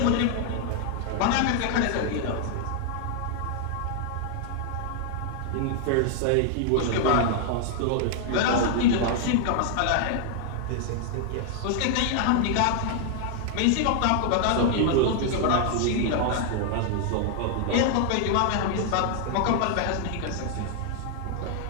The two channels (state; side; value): different; both; correlation 0.00